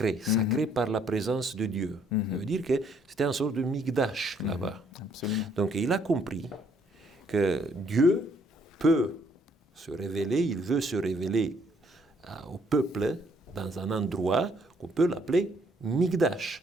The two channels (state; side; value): normal; both; correlation 0.66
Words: sacré par la présence de Dieu. Ça veut dire que c'était une sorte de Migdash là-bas. Absolument. Donc il a compris que Dieu peut se révéler, il veut se révéler au peuple dans un endroit qu'on peut l'appeler